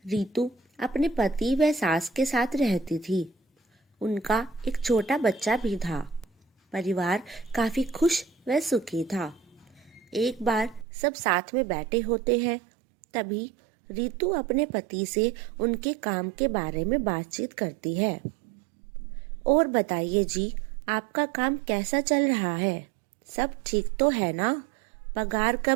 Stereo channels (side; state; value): left; drops out; at 10.9 s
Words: रीतु अपने पति व सास के साथ रहती थी। उनका एक छोटा बच्चा भी था। परिवार काफी खुश व सुखी था। एक बार सब साथ में बैठे होते हैं, तभी रीतु अपने पति से उनके काम के बारे में बातचीत करती है। और बताइए जी, आपका काम कैसा चल रहा है? सब ठीक तो है ना? पगार